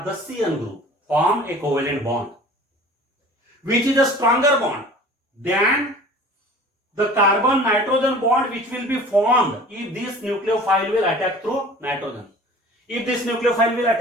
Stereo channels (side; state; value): both; normal; correlation 0.44